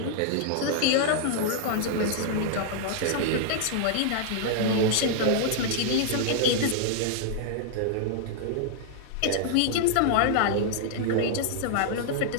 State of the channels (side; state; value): both; different; correlation -0.01